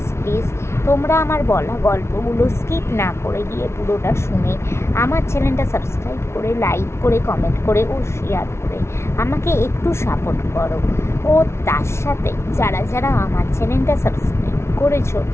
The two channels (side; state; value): right; late; 0.13 ms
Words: তোমরা আমার বলা গল্পগুলো স্কিপ না করে গিয়ে পুরোটা শুনে আমার চ্যানেলটা সাবস্ক্রাইব করে, লাইক করে, কমেন্ট করে ও শেয়ার করে আমাকে একটু সাপোর্ট করো। ও তার সাথে যারা আমার চ্যানেলটা সাবস্ক্রাইব করেছো